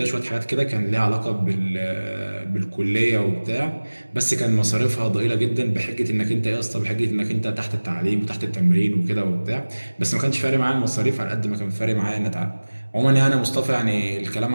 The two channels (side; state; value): both; inverted; correlation -1.00